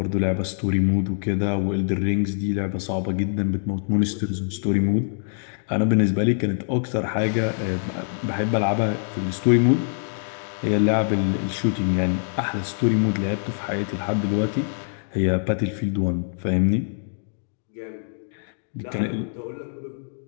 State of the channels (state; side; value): silent; right; digital silence